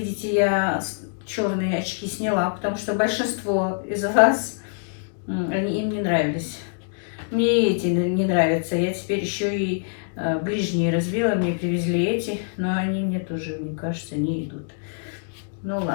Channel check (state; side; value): silent; right; digital silence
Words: я черные очки сняла, потому что большинство из вас, им не нравились. Мне эти не нравятся. Я теперь еще и ближние развела, мне привезли эти, но они мне тоже, мне кажется, не идут. Ну